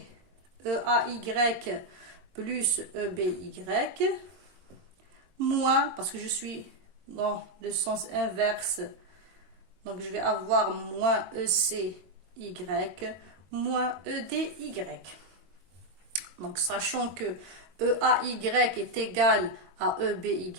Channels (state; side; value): late; left; 22 ms